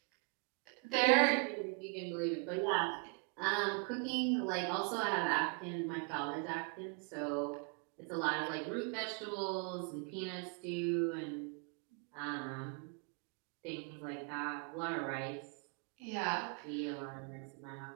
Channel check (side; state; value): left; quieter; 35.8 dB